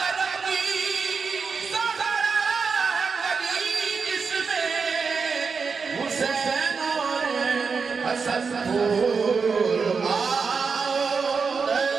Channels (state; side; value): quieter; left; 5.2 dB